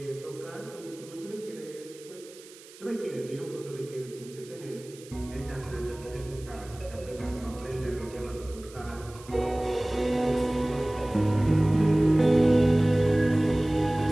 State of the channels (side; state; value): right; noise; hiss, 21 dB below the sound